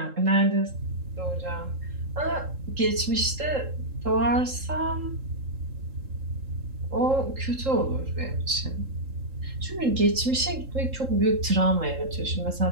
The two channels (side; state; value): left; late; 3.7 ms